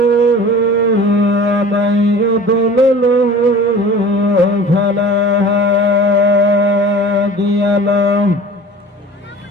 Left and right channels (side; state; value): both; normal; correlation 0.41